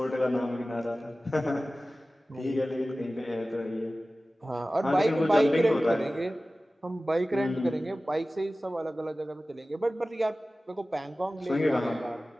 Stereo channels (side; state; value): both; normal; correlation 0.96